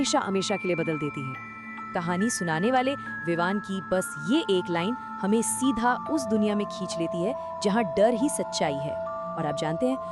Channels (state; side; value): identical; both; correlation 1.00